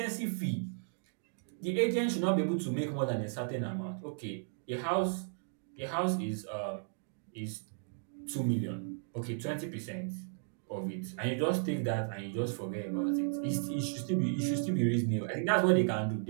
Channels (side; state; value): left; silent; digital silence